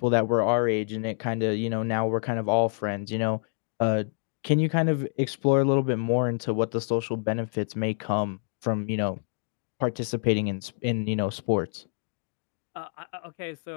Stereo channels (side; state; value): right; silent; 59 dB below the other